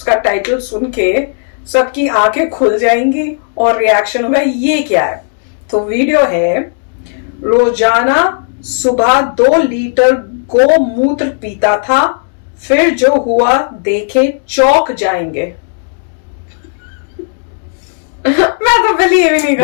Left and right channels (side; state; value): right; silent; digital silence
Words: टाइटल सुन के सबकी आंखें खुल जाएंगी और रिएक्शन होगा ये क्या है। तो वीडियो है, रोजाना सुबह 2 लीटर गोमूत्र पीता था, फिर जो हुआ देखे चौंक जाएंगे। मैं तो बिलीव ही नहीं कर